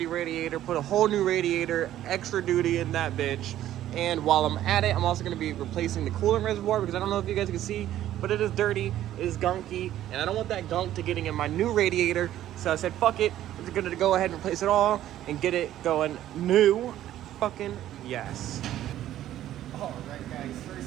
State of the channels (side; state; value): left; quieter; 12.7 dB